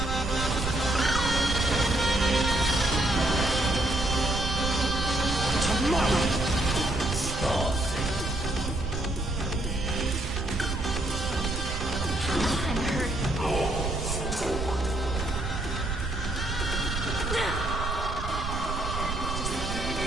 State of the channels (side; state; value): right; noise; rumble, 4 dB below the sound